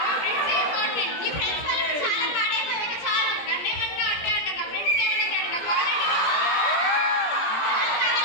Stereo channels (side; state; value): right; late; 17 ms